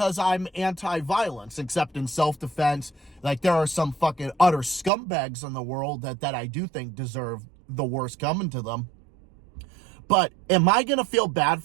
I'm anti-violence, except in self-defense. Like, there are some fucking utter scumbags in the world that I do think deserve the worst coming to them. But am I going to feel bad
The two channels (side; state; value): left; drops out; at 4.9 s